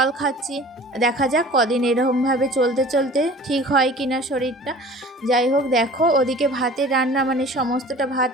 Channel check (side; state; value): both; normal; correlation 0.44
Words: খাচ্ছি, দেখা যাক কদিন এরকমভাবে চলতে চলতে ঠিক হয় কিনা শরীরটা। যাই হোক, দেখো ওদিকে ভাতের রান্না মানে সমস্তটা ভাত